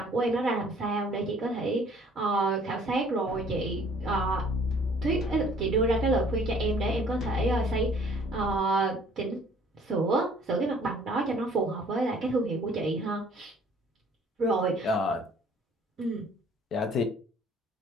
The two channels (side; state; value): both; normal; correlation 0.56